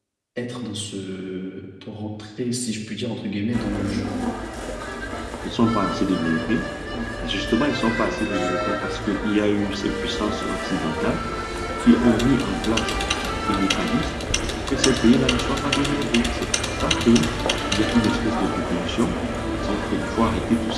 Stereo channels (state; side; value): identical; both; correlation 1.00